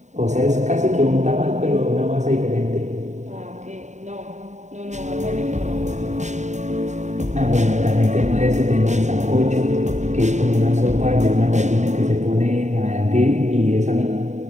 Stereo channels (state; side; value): late; left; 0.34 ms